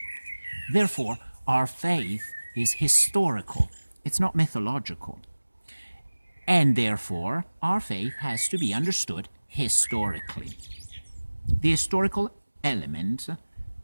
Therefore, our faith is historical. It's not mythological. And therefore, our faith has to be understood historically. The historical element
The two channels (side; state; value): both; inverted; correlation -1.00